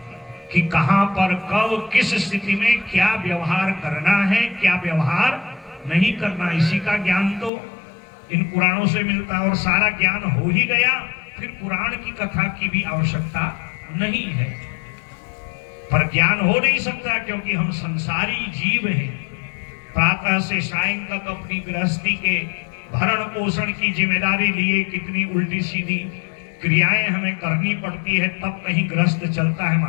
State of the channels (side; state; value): right; drops out; at 7.5 s